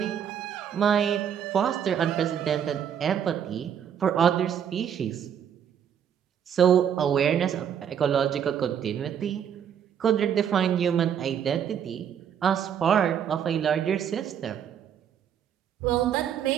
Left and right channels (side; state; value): left; quieter; 8.7 dB